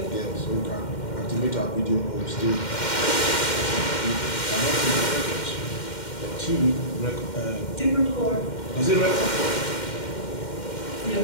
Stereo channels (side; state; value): right; late; 2.1 ms